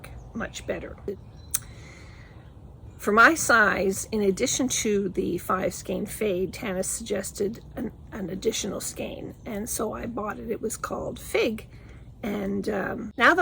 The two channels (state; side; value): identical; both; correlation 1.00